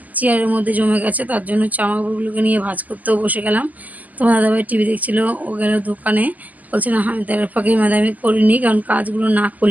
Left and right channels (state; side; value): late; left; 0.079 ms